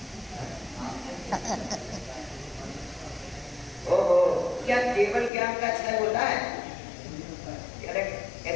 ओहो, क्या केवल ज्ञान का क्षय होता है?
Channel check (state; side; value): drops out; right; at 5.3 s